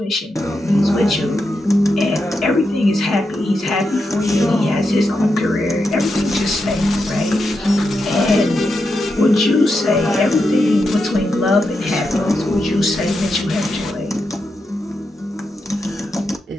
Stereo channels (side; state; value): both; normal; correlation 0.86